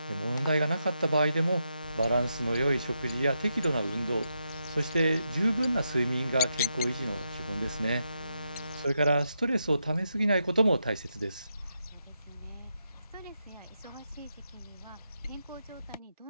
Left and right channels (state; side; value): inverted; both; correlation -0.83